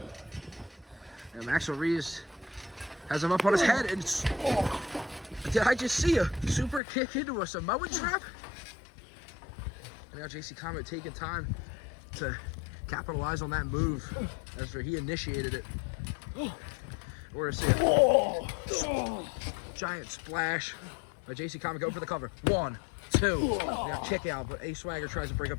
And Maxel Reeves has him up on his head, and did I just see a super kick into a Samoan trap? And now JC Comet taking time to capitalize on that move as he initiated it. We're gonna see a giant splash by JC Comet going for the cover. 1, 2, now kick out, but Ace Swagger tries to break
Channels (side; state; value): right; drops out; at 6.8 s